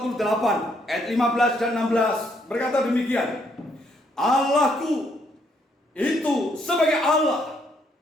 ayat 15 dan 16 berkata demikian. Allahku itu sebagai Allah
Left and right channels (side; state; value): both; normal; correlation 0.71